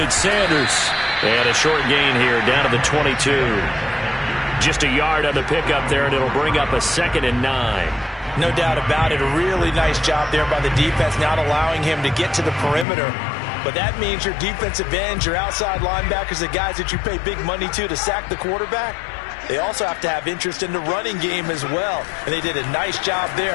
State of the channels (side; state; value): right; drops out; at 12.9 s